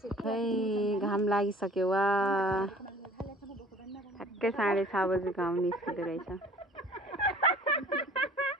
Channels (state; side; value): normal; both; correlation 0.50